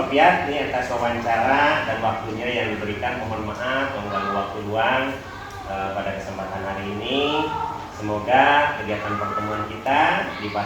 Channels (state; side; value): identical; both; correlation 1.00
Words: Piat ini atas wawancara dan waktunya yang diberikan. Mohon maaf mengganggu waktu luang pada kesempatan hari ini. Semoga kegiatan pertemuan kita di